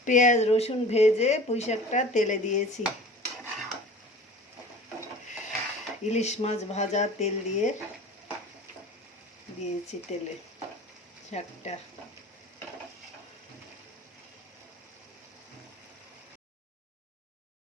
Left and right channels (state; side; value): normal; both; correlation 0.41